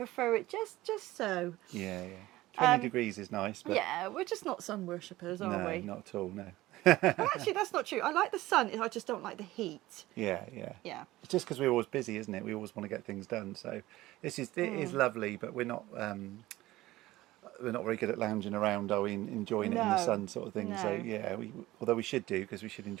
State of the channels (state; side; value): quieter; left; 17.3 dB